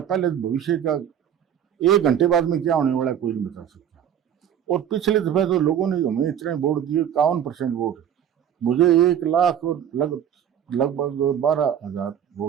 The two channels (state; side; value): quieter; left; 9.4 dB